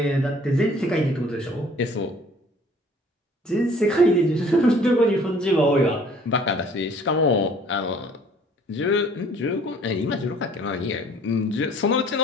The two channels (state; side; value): normal; both; correlation 0.54